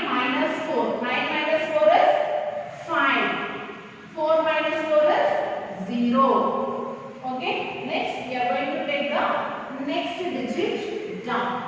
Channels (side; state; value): both; identical; correlation 1.00